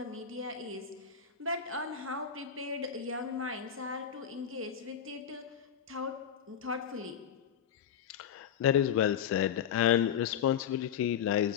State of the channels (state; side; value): quieter; right; 8.4 dB